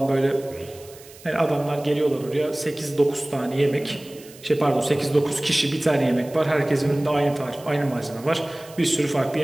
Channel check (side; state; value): right; noise; hiss, 21 dB below the sound